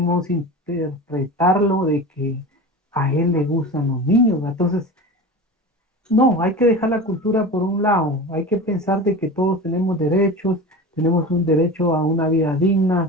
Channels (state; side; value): normal; both; correlation 0.30